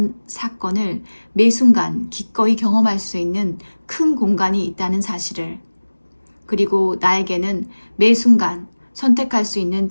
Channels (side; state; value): both; inverted; correlation -1.00